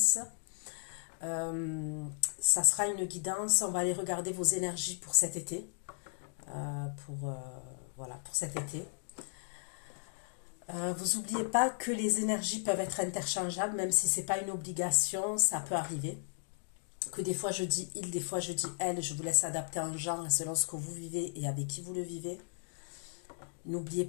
Ça sera une guidance. On va aller regarder vos énergies pour cet été. Voilà, pour cet été. Vous n'oubliez pas que les énergies peuvent être interchangeables, même si ce n'est pas une obligation, ça peut arriver. Que des fois je dis il, des fois je dis elle, je vous laisse adapter en genre selon ce que vous vivez et avec qui vous le vivez. N'oubliez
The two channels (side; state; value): right; silent; digital silence